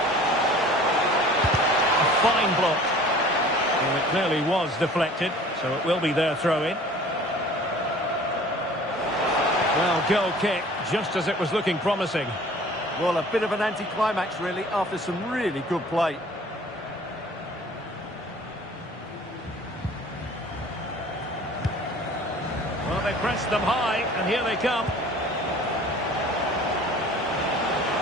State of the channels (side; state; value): both; normal; correlation 0.47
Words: A fine block. Well, it clearly was deflected, so it will be their throw-in. Well, goal kick, just as it was looking promising. Well, a bit of an anticlimax, really, after some really good play. Well, they pressed them high, and here they come.